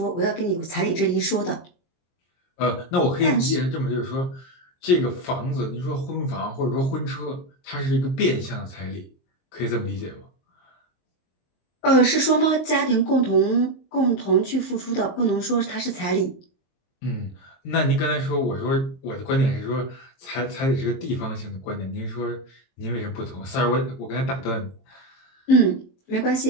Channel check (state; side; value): late; right; 23 ms